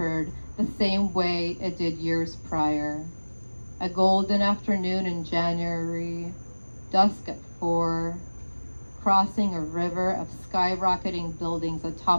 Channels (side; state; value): both; inverted; correlation -1.00